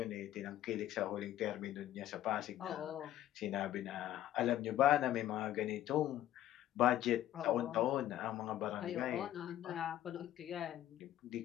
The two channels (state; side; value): quieter; right; 12.9 dB